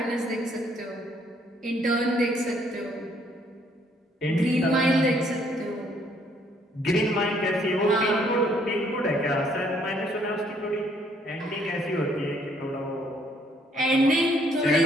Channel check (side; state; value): both; normal; correlation 0.66